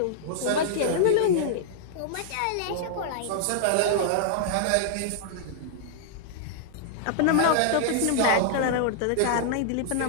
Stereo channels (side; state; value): both; different; correlation -0.01